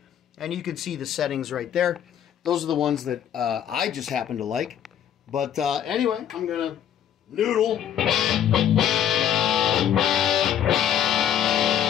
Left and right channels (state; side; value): quieter; right; 10.0 dB